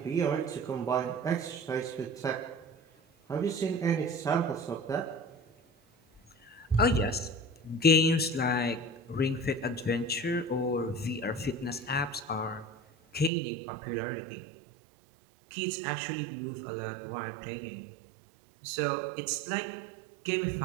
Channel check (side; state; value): left; drops out; at 13.3 s